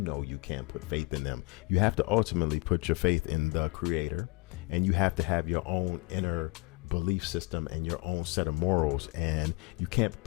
you can't put faith in them. You have to ultimately put your faith in the creator, and you have to have your own inner belief system and your own set of morals, and you can't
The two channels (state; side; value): quieter; right; 27.5 dB